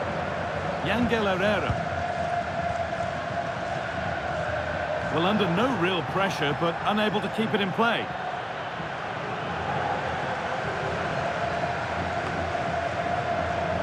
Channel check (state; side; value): identical; both; correlation 1.00